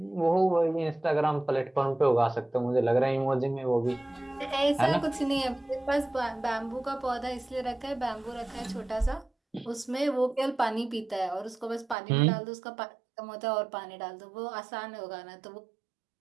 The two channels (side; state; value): left; drops out; at 12.0 s